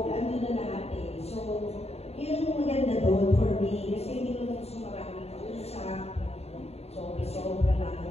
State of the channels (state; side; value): late; right; 0.30 ms